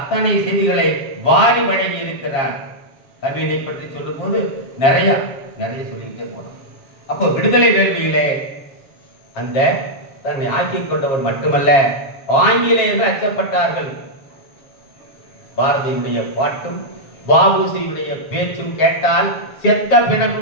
செய்திகளை வாரி வழங்கி இருக்கிறார். கவிதை பற்றி சொல்லும் போது நிறைய சொல்லிக்கிட்டே போனோம். அப்போ விடுதலை வேள்வியிலே அந்த தன்னை ஆக்கிக் கொண்டவர் மட்டுமல்ல, ஆங்கிலேயர்கள் அச்சப்பட்டார்கள். பாரதியுடைய பாட்டும் வ.உ.சியுடைய பேச்சும் கேட்டால் செத்த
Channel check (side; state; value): right; late; 7.4 ms